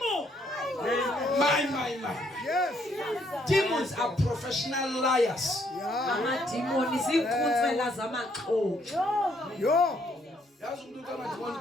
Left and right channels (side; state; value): both; normal; correlation 0.69